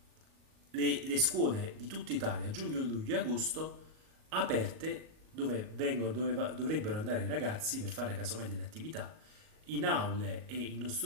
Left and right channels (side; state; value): left; late; 38 ms